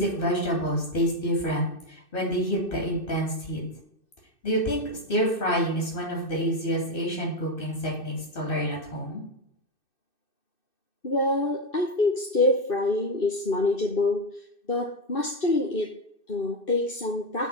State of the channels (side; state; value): right; late; 2.6 ms